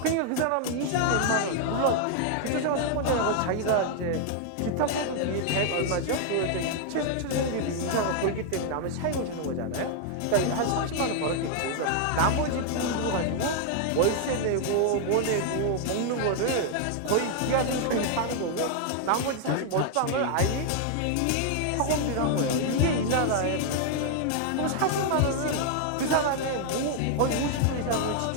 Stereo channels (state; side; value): different; both; correlation 0.00